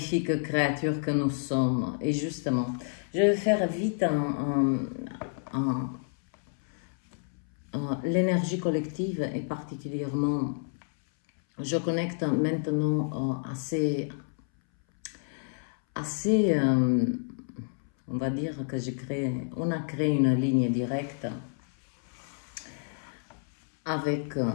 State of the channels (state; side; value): silent; right; 58 dB below the other